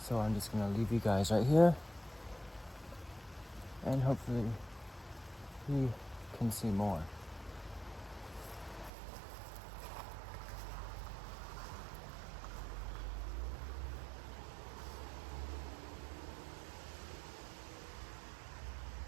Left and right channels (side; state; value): left; drops out; at 8.9 s